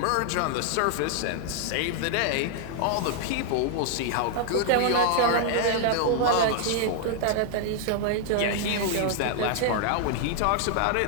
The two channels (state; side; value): different; both; correlation 0.00